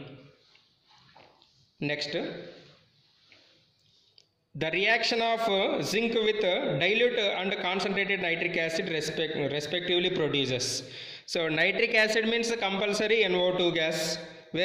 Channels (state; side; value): identical; both; correlation 1.00